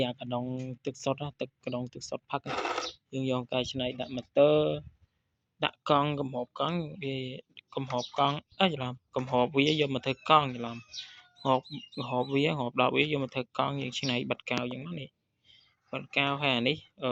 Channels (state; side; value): identical; both; correlation 1.00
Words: អាកដុងទឹកសុទ្ធទឹកកដុងទឹកសុទ្ធផឹកយើងយកកែច្នៃដាក់ម៉ូទ័រដាក់កង់កំហបកង់វាកំហបកង់ច្រឡំកំហបវាយកមកធ្វើកង់ច្រឡំហបវាហបដល់វាយកមកធ្វើកង់យើងច្នៃបិទកៅអញ្ចឹងនេះបិទកៅហើយអានេះ